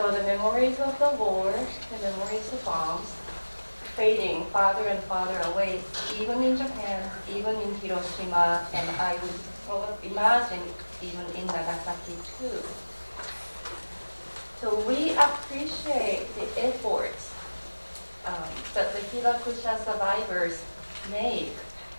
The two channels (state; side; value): inverted; both; correlation -1.00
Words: the memories of the war, the memories of bombs, fading farther and farther away, even in Japan, even in Hiroshima, and I would imagine even in Nagasaki too. So we appreciate the efforts that the Hibakusha survivors make